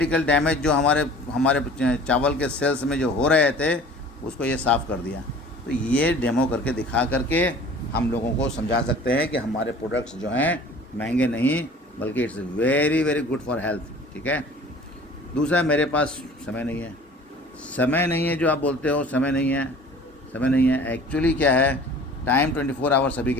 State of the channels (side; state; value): both; normal; correlation 0.46